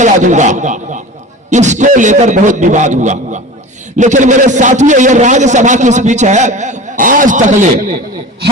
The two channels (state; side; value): normal; both; correlation 0.35